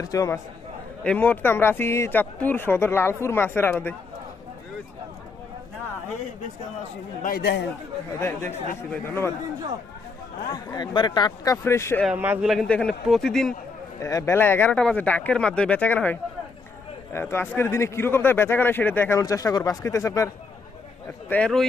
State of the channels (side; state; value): right; quieter; 4.3 dB